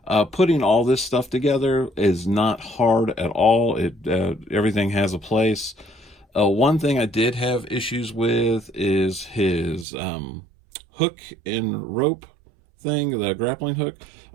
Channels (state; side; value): drops out; left; at 9.9 s